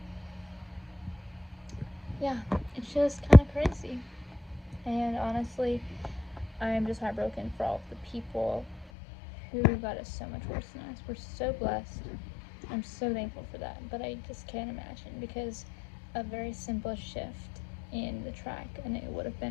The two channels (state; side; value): drops out; right; at 8.9 s